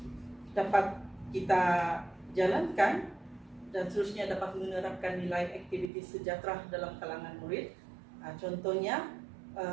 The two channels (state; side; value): drops out; left; at 5.9 s